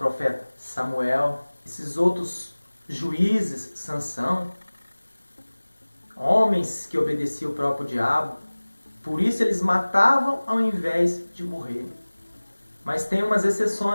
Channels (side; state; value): both; inverted; correlation -1.00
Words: Samuel, esses outros juízes, Sansão, homens que obedeciam o próprio diabo. Por isso eles matavam ao invés de morrer. Mas tem umas